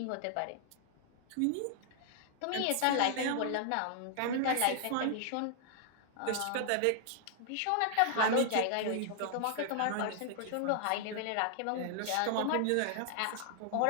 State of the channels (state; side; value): different; both; correlation -0.01